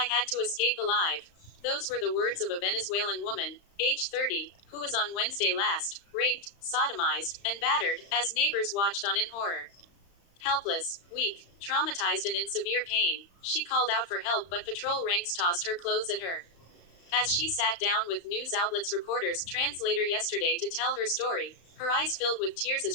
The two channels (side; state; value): right; late; 35 ms